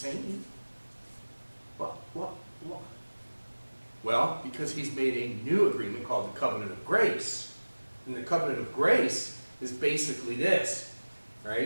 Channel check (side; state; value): both; inverted; correlation -1.00